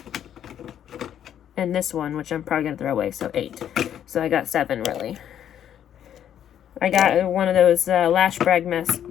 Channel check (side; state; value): right; quieter; 9.9 dB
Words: And this one, which I'm probably going to throw away, so 8. So I got 7, really. I got one of those Lash Brag